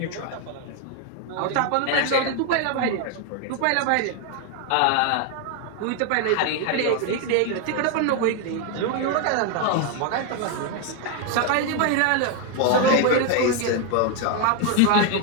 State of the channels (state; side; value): different; both; correlation 0.01